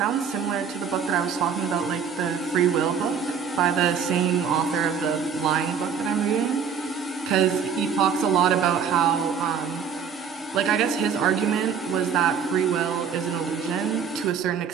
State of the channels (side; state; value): left; quieter; 6.9 dB